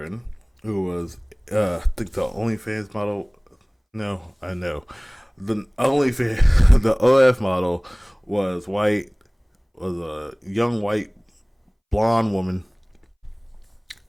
who was I think the OnlyFans model. No, I know. The OnlyFans the OF model was white, was a young white blonde woman,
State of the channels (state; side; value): identical; both; correlation 1.00